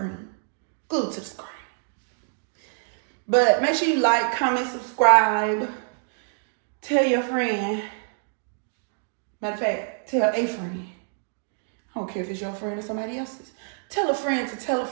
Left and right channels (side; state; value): left; silent; digital silence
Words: Glued to the screen. But make sure you like, comment, subscribe. Tell your friend. Matter of fact, tell a friend. I don't care if it's your friend or somebody else's. Tell a friend to tell a